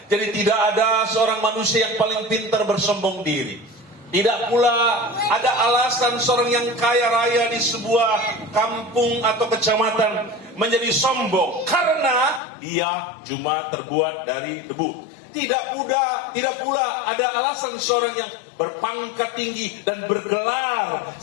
Jadi tidak ada seorang manusia yang paling pintar bersombong diri. Tidak pula ada alasan seorang yang kaya raya di sebuah kampung atau kecamatan menjadi sombong karena dia cuma terbuat dari debu. Tidak pula ada alasan seorang yang berpangkat tinggi dan bergelar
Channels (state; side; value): drops out; right; at 12.4 s